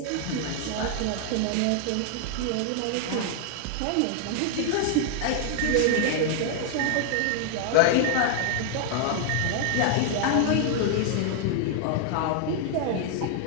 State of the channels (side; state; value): both; different; correlation 0.00